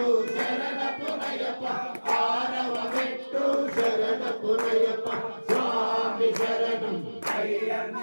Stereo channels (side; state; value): both; inverted; correlation -1.00